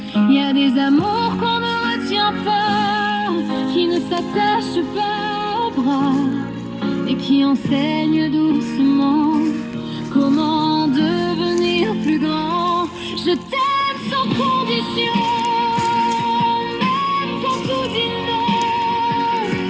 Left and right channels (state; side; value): identical; both; correlation 1.00